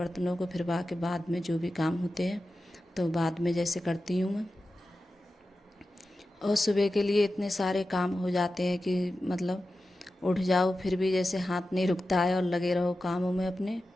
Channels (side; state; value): both; normal; correlation 0.93